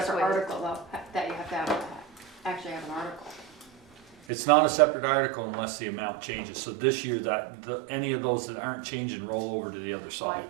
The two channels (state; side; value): drops out; left; at 4.2 s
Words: separate waived. article though, that you have to have, actually have an article. It's not a separate article unless the amount changes. So this year any of those that aren't changing roll over to the other side.